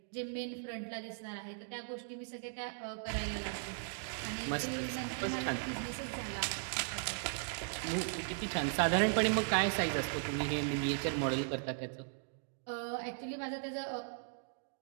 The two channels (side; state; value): left; silent; digital silence